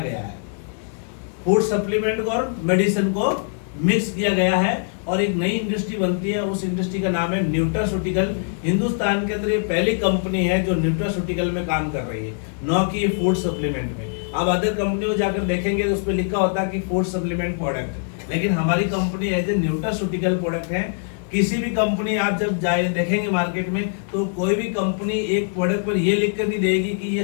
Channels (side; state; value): right; silent; digital silence